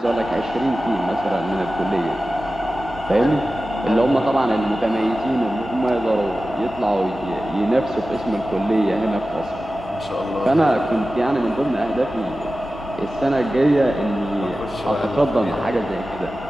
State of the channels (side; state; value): both; normal; correlation 0.95